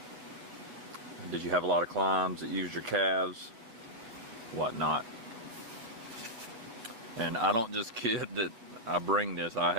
Did you have a lot of climbs that used your calves? What not? And I don't just kid that I bring this. I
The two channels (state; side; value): late; left; 8.6 ms